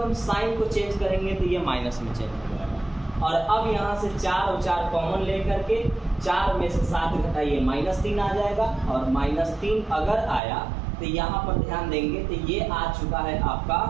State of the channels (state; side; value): drops out; left; at 10.4 s